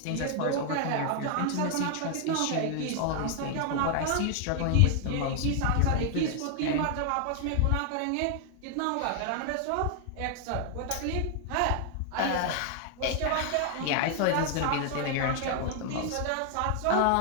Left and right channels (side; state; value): both; different; correlation 0.00